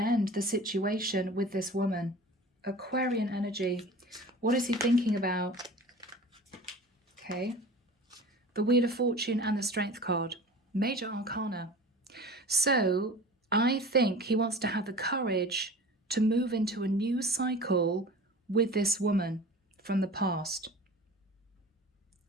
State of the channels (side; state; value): both; normal; correlation 0.39